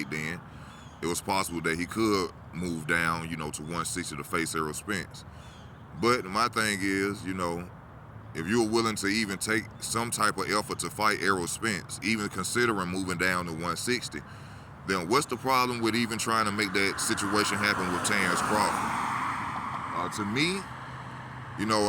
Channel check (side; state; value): both; identical; correlation 1.00